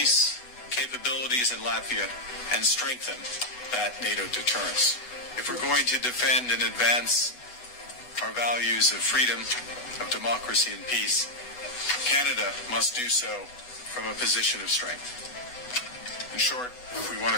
capabilities in Latvia and strengthen that NATO deterrence. If we're going to defend and advance our values of freedom, of democracy and peace, Canada must do so from a position of strength. In short, if we want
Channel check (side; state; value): right; late; 8.1 ms